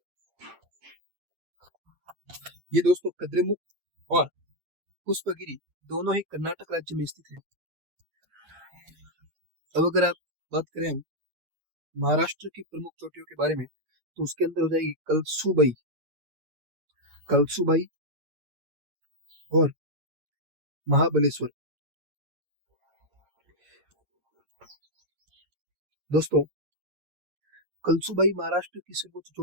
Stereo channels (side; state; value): left; late; 8.6 ms